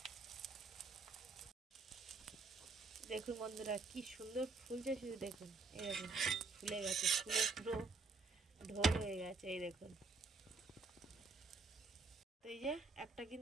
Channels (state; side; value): quieter; left; 4.1 dB